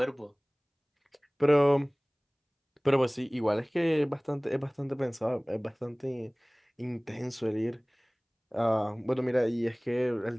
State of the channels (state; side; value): identical; both; correlation 1.00